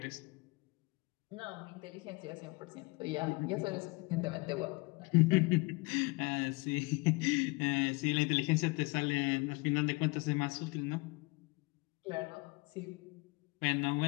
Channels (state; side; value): quieter; right; 26.4 dB